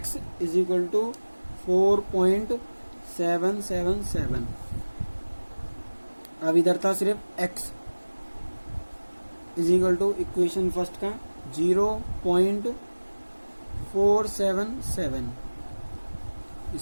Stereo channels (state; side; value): inverted; both; correlation -1.00